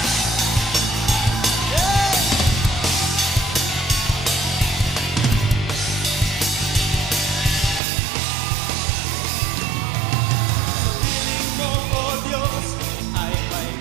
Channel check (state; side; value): drops out; left; at 7.8 s